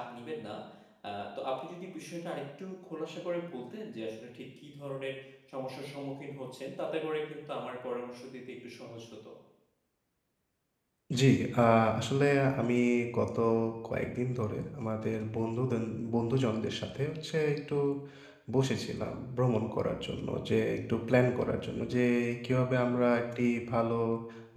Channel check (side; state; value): both; identical; correlation 1.00